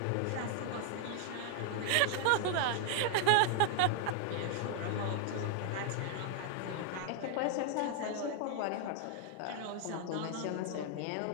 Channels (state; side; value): different; both; correlation 0.00